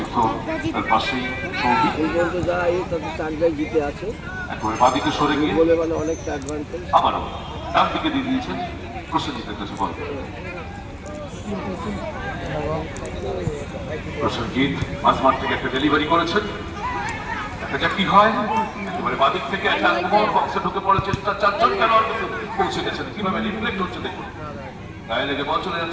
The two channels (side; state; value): both; identical; correlation 1.00